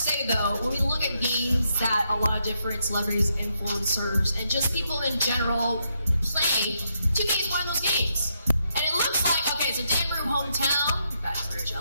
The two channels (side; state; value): both; inverted; correlation -0.79